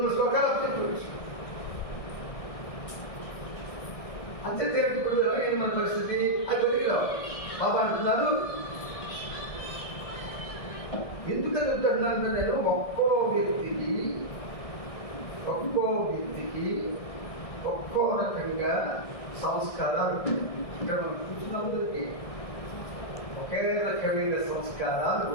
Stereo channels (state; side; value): late; right; 1.6 ms